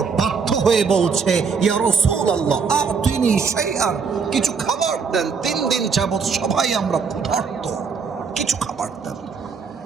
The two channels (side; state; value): left; quieter; 5.6 dB